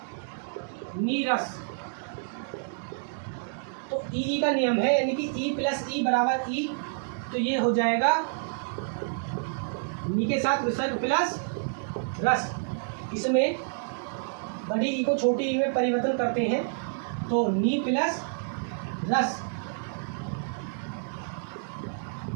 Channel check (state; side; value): silent; left; digital silence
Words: नीरस, तो ई का नियम है, यानी कि ई प्लस ई बराबर ई, तो ये हो जाएगा नी के साथ विसर्ग प्लस रस। इसमें बड़ी ई को छोटी ई में परिवर्तन करते हैं, तो नी प्लस रस,